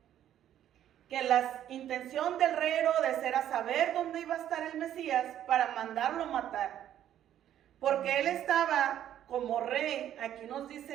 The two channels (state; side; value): quieter; left; 11.1 dB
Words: que la intención del rey Herodes era saber dónde iba a estar el Mesías para mandarlo matar. Porque él estaba como rey, aquí nos